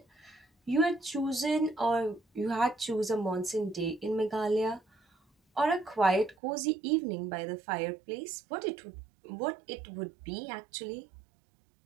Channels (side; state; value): left; drops out; at 6.4 s